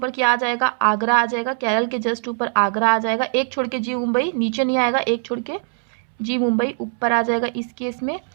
क्या आ जाएगा, आगरा आ जाएगा। केरल के जस्ट ऊपर आगरा आ जाएगा। एक छोड़ के जी मुंबई नीचे नहीं आएगा, एक छोड़ के जी मुंबई ऊपर आ जाएगा इस केस में।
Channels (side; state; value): left; silent; 65 dB below the other